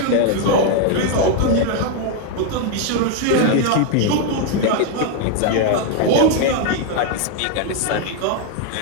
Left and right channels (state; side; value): different; both; correlation 0.01